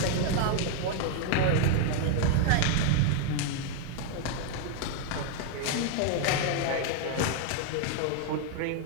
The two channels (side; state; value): both; different; correlation 0.00